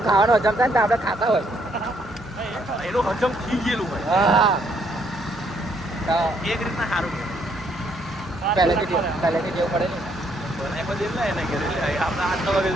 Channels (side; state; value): both; normal; correlation 0.70